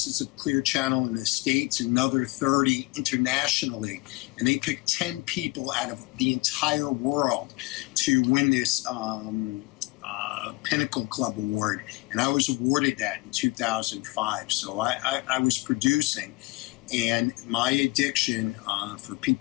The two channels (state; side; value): quieter; right; 23.4 dB